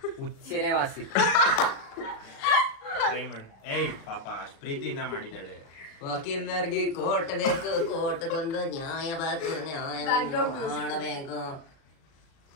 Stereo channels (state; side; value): late; right; 37 ms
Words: ಹುಚ್ಚೆನೆ ವಾಸಿ. ಏಯ್ ಪಾಪ ಅಷ್ಟು ಪ್ರೀತಿಯಿಂದ ಮಾಡಿದ್ದಾಳೆ. ವಕೀಲರಿಗೆ ಕೋರ್ಟ್ ಬೇಕು, ಕೋರ್ಟ್ಗೊಂದು ನ್ಯಾಯ ಬೇಕು, ನ್ಯಾಯ ಮಾಡಬೇಕು.